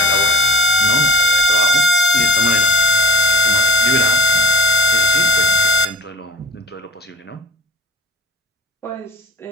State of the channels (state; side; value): normal; both; correlation 0.39